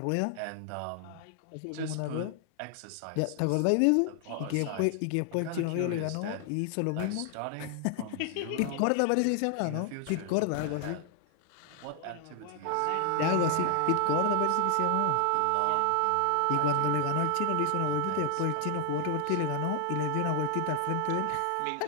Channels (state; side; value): different; both; correlation 0.00